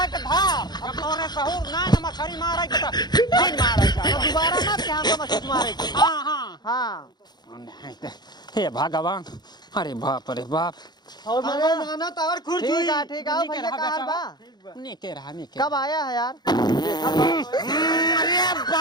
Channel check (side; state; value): right; late; 0.20 ms